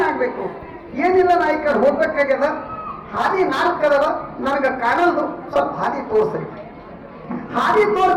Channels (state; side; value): identical; both; correlation 1.00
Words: ಏನಿಲ್ಲ, ನಾ ಈ ಕಡೆ ಹೋಗ್ಬೇಕಾಗ್ಯದ, ಹಾದಿ 4 ಅದಾವ, ನನಗೆ ಕಾಣಲ್ದು, ಸ್ವಲ್ಪ ಹಾದಿ ತೋರಿಸ್ರಿ. ಹಾದಿ